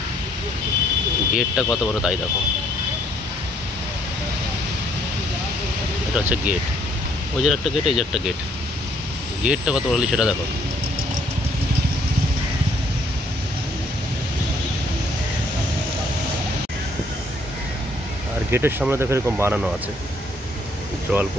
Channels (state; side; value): normal; both; correlation 0.66